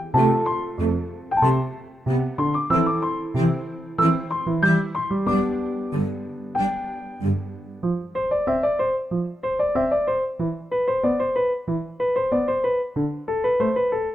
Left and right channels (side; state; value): both; normal; correlation 0.88